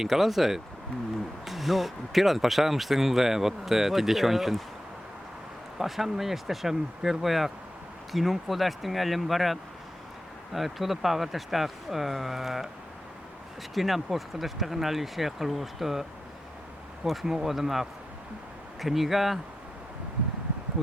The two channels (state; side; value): normal; both; correlation 0.90